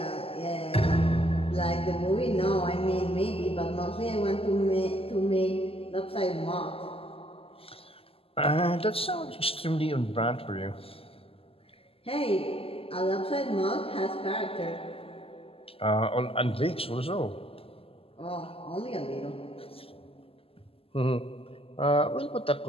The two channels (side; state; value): right; late; 0.28 ms